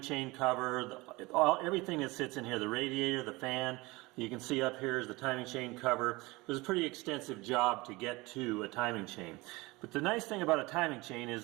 chain cover, everything that sits in here, the radiator, the fan. You can see up here is the timing chain cover. It was a pretty extensive job to get to a timing chain. But the nice thing about a timing chain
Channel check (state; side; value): quieter; left; 22.8 dB